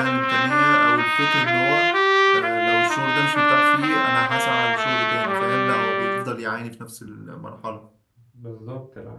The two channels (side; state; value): both; identical; correlation 1.00